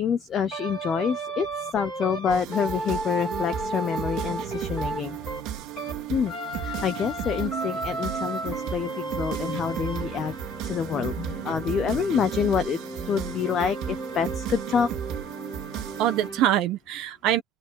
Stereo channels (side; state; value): both; normal; correlation 0.56